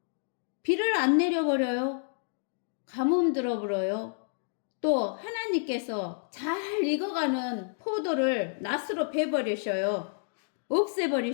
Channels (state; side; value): silent; right; digital silence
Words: 비를 안 내려버려요? 가뭄 들어버려요? 또 하나님께서 잘 익어가는 포도를 낫으로 베버리셔요.